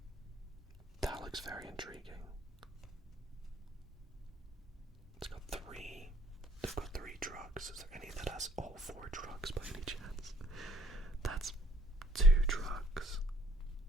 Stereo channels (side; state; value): both; normal; correlation 0.62